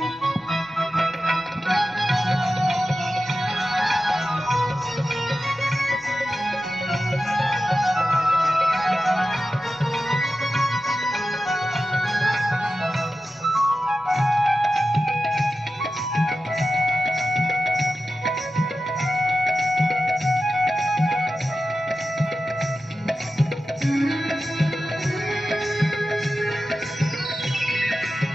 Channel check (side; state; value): both; normal; correlation 0.93